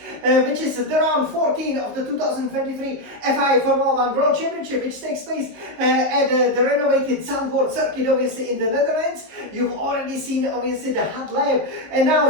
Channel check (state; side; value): late; left; 19 ms